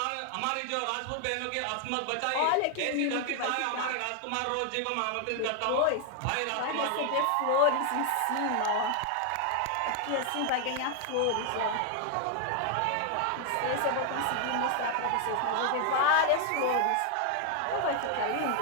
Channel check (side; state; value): both; different; correlation 0.00